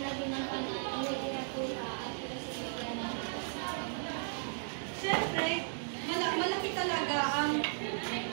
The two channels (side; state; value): left; silent; digital silence